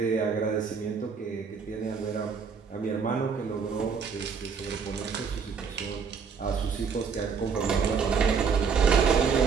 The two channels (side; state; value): left; quieter; 5.9 dB